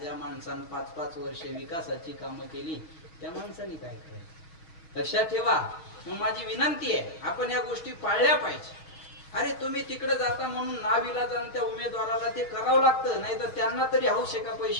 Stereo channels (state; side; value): late; right; 6.2 ms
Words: माणसानं 5-5 वर्षे विकासाची कामं केली त्या माणसाने काय करायचं? लक्षात ठेवा. मग माझी विनंती आहे, आपण या गोष्टी पाळल्या पाहिजे. अरे तुम्ही तिकडे जाता म्हणून नाविलाजानं त्या उमेदवाराला ते करावं लागतं, नाही तर त्यांना तरी हौस आहे का